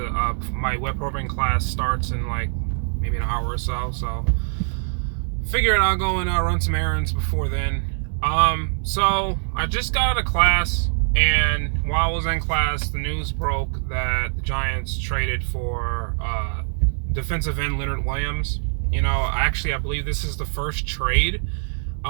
My web programming class starts in like maybe an hour or so, so figured I'll go and run some errands before then. So I just got out of class, and while I was in class, the news broke that the Giants traded for defensive end Leonard Williams. I believe this is the first trade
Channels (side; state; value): left; silent; digital silence